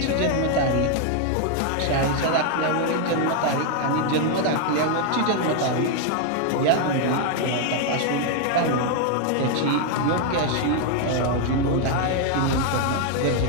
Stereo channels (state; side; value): different; both; correlation 0.00